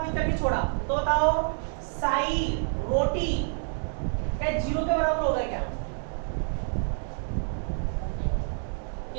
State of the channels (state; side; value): silent; left; 59 dB below the other